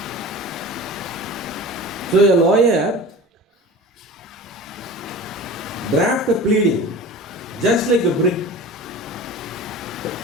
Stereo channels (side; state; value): both; normal; correlation 0.36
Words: So a lawyer draft a pleading just like a brick.